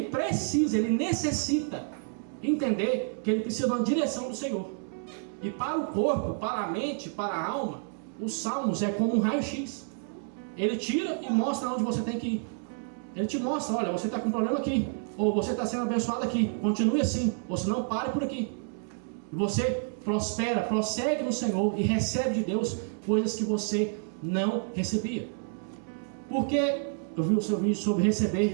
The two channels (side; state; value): left; silent; 58 dB below the other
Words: precisa, ele necessita entender que ele precisa de uma direção do Senhor. E para o corpo, para a mente, para a alma, os salmos é como um raio-x. Ele tira e mostra onde você tem que ir. Ele te mostra, olha, você está com um problema aqui, ou você está sendo abençoado aqui, continue assim, ou se não, pare por aqui. E você prospera, prossegue no Senhor e recebe de Deus coisas que você não recebia. Porque eu vi o seu vídeo sobre